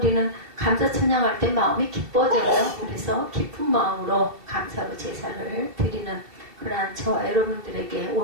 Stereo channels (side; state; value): left; late; 2.7 ms